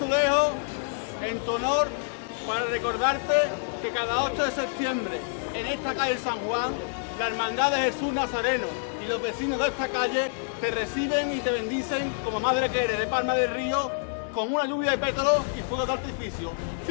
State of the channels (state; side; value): silent; right; digital silence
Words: azulejo en tu honor para recordarte que cada 8 de septiembre en esta calle San Juan, la Hermandad de Jesús Nazareno y los vecinos de esta calle te reciben y te bendicen como madre que eres de Palma del Río, con una lluvia de pétalos y fuegos de artificio.